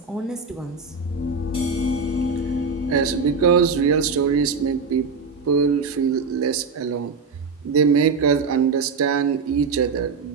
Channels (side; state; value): left; quieter; 4.8 dB